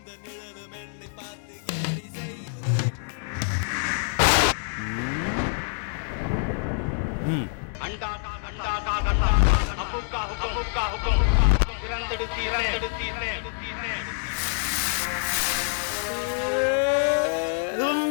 நிழலும் என்னை பார்த்து கேலி செய்யுதே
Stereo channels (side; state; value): right; silent; 61 dB below the other